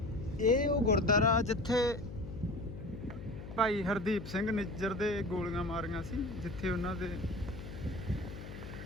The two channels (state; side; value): noise; left; hum, 11 dB below the sound